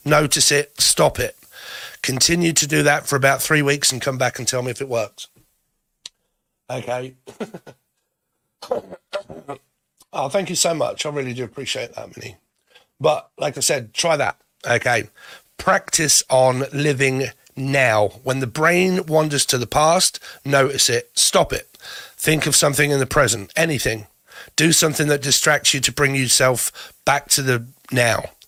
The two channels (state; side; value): identical; both; correlation 1.00